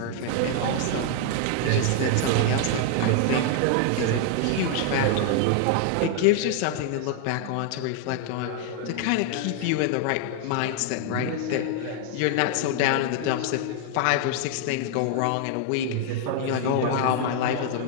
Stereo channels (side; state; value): both; different; correlation 0.00